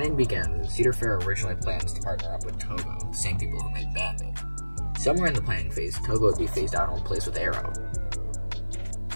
began when Cedar Fair originally plans to partner up with Togo, the same people who made Bandit. Somewhere in the planning phase, Togo would be phased out and replaced with Arrow.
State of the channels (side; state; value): both; inverted; correlation -1.00